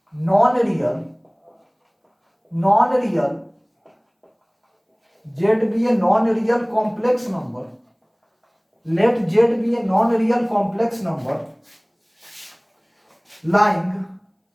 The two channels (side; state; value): both; identical; correlation 1.00